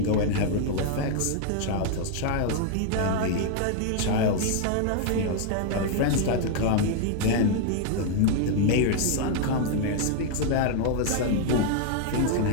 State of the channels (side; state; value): both; different; correlation 0.00